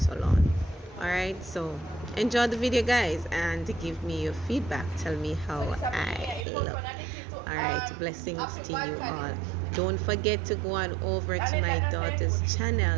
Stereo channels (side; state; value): left; drops out; at 6.5 s